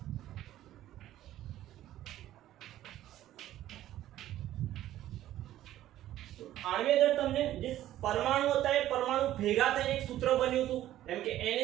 આણ્વીય દળ તમને જે પરમાણુ હતા એ પરમાણુ ભેગા થઈને એક સૂત્ર બન્યું હતું. જેમ કે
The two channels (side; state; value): left; quieter; 13.4 dB